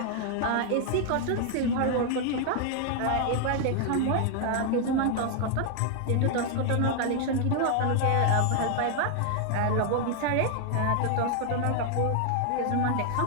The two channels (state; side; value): different; both; correlation 0.00